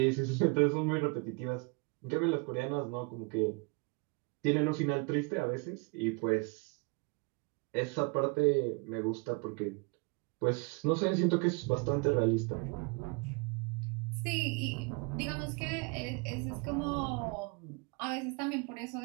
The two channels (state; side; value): quieter; left; 31.2 dB